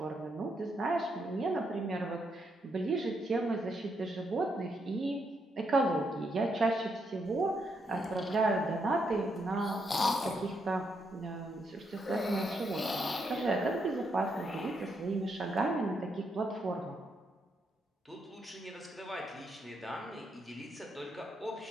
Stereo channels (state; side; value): normal; both; correlation 0.78